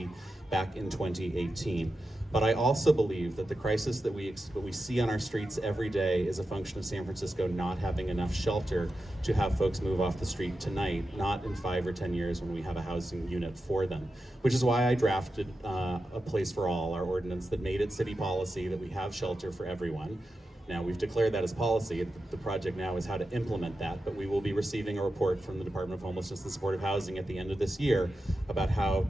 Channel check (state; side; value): normal; both; correlation 0.90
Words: back in 2018. But I also believe that the crisis that we see on our streets every day is a function of San Francisco not having enough shelter to have folks move off the street tonight, not in 5 or 10 years when we have a housing unit for them, which is why I drafted a Place for All, our ordinance that made it city policy that we have shelter for everyone. Now, we've declared that as policy. The project now is how to implement that, but we will be receiving a report from the Department of Homelessness and Supportive Housing at the end of this year about how